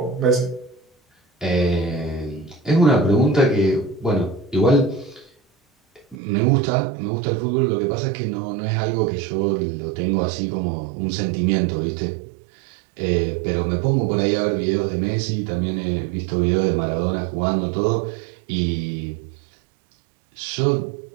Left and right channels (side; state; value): left; drops out; at 6.2 s